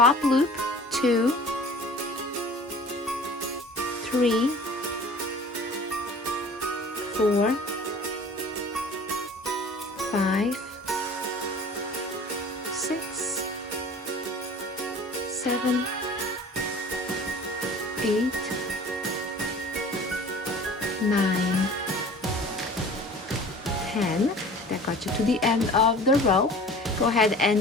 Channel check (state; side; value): normal; both; correlation 0.44